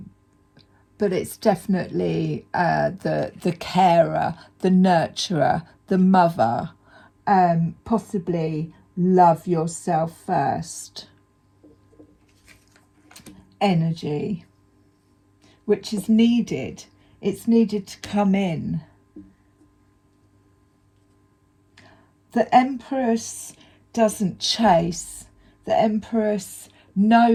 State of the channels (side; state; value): both; identical; correlation 1.00